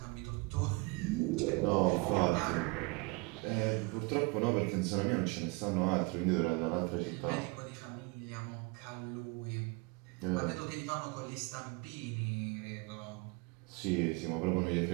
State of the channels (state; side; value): quieter; left; 28.4 dB